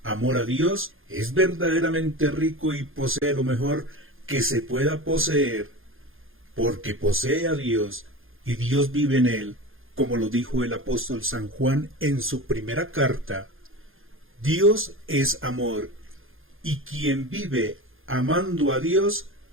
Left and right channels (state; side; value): late; left; 0.60 ms